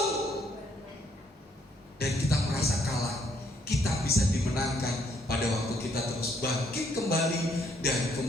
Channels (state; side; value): normal; both; correlation 0.69